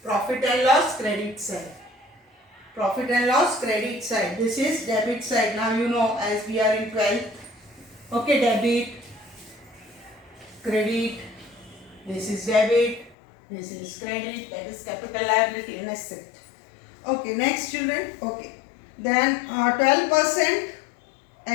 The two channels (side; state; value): right; drops out; at 13.2 s